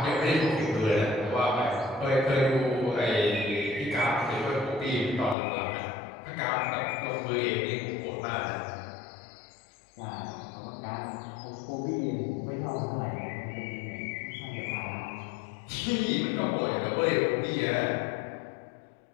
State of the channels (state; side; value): drops out; right; at 5.4 s